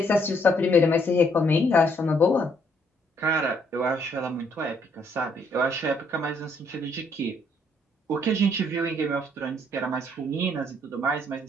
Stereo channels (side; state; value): both; normal; correlation 0.69